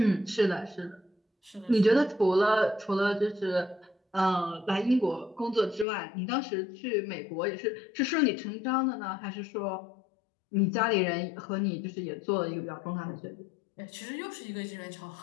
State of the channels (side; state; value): right; drops out; at 5.9 s